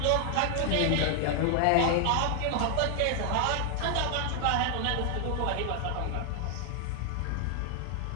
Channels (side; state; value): both; different; correlation 0.00